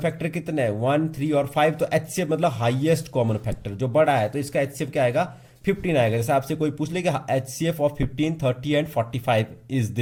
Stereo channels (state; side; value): identical; both; correlation 1.00